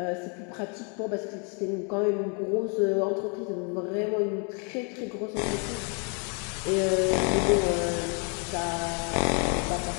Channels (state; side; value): quieter; right; 37.4 dB